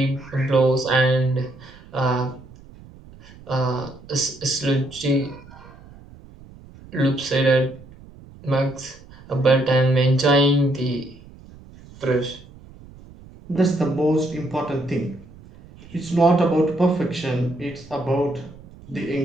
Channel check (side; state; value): right; noise; rumble, 21 dB below the sound